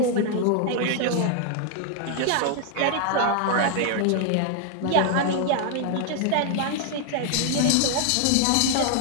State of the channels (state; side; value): different; both; correlation 0.00